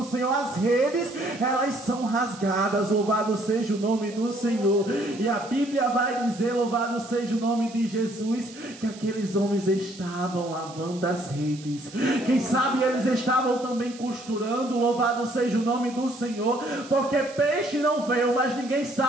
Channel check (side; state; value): right; noise; hiss, 19 dB below the sound